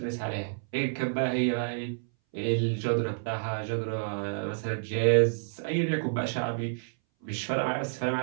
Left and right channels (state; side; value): silent; left; 58 dB below the other